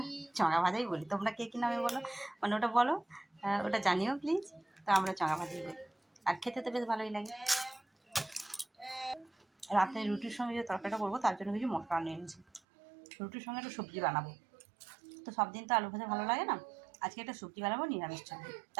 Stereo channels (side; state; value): left; drops out; at 12.6 s